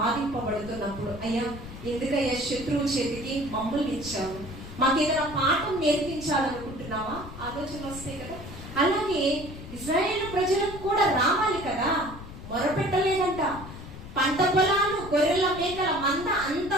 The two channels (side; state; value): left; noise; rumble, 13 dB below the sound